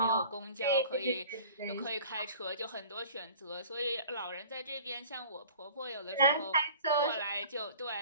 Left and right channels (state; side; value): inverted; both; correlation -0.45